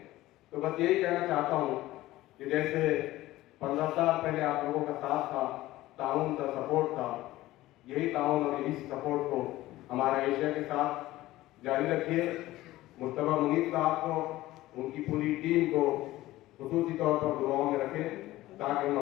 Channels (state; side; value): quieter; right; 16.7 dB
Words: तो बस यही कहना चाहता हूँ कि जैसे 15 साल पहले आप लोगों का साथ था, ताउन था, सपोर्ट था, यही ताउन और यही सपोर्ट को हमारा एशिया के साथ जारी रखिए। मुस्तफा मुनीर साहब को, उनकी पूरी टीम को खुसूसी तौर पर दुआओं में रखें ताकि हम